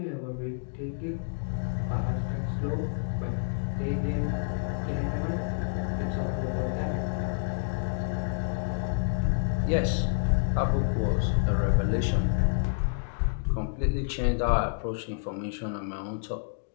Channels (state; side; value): silent; right; digital silence